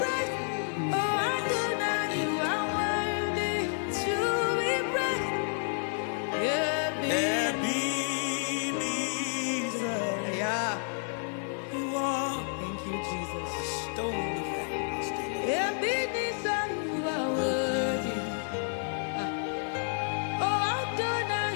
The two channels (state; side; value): silent; right; 57 dB below the other